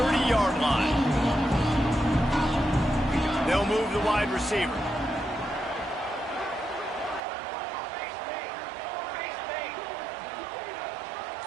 line. They'll move the wide receiver.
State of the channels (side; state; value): left; drops out; at 7.2 s